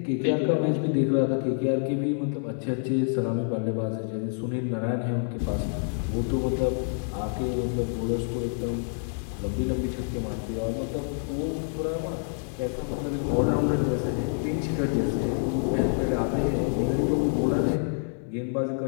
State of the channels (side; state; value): right; silent; 60 dB below the other